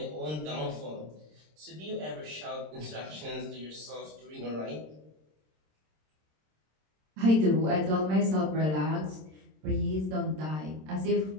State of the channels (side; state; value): left; late; 26 ms